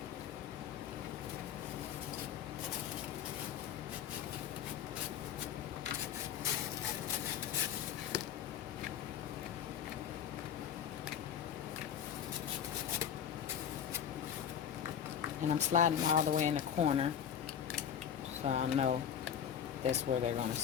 And I'm sliding them all the way in the corner so I know that's where they're going to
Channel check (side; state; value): right; quieter; 8.9 dB